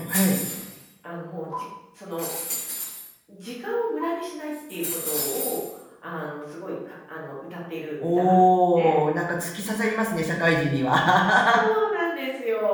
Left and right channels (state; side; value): identical; both; correlation 1.00